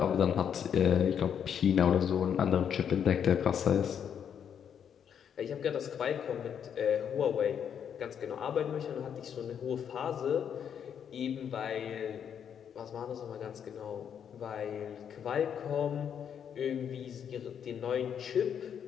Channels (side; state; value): right; quieter; 8.3 dB